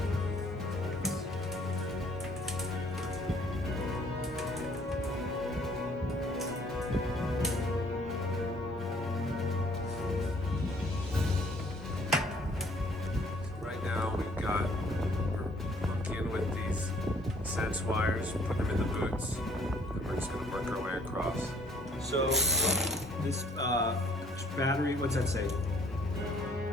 Right now we're monkeying with these sense wires, putting them in the boots, and we're just gonna work our way across. So this battery, what's that say?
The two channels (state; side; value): normal; both; correlation 0.60